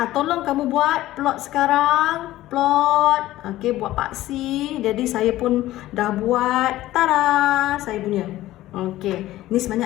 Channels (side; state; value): right; quieter; 15.5 dB